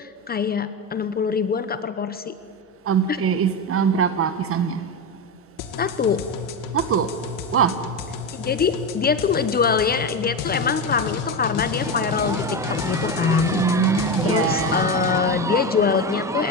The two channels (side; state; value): both; normal; correlation 0.16